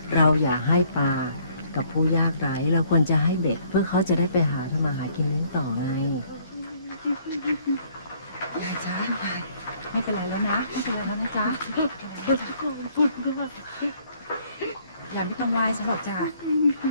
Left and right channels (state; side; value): inverted; both; correlation -0.63